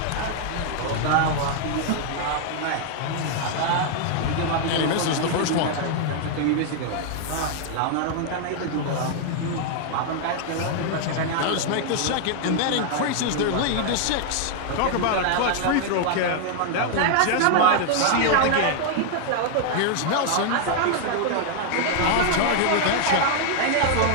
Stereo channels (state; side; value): different; both; correlation 0.00